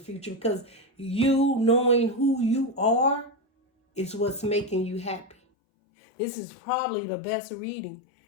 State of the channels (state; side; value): drops out; right; at 5.4 s